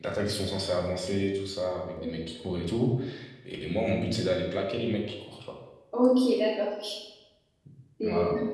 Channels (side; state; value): both; identical; correlation 1.00